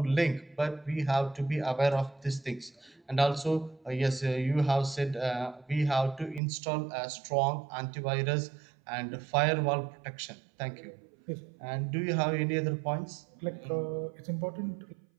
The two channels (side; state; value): left; drops out; at 6.4 s